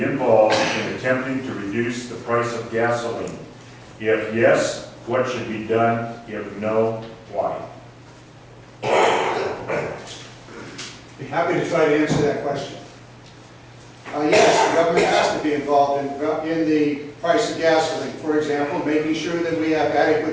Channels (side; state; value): both; identical; correlation 1.00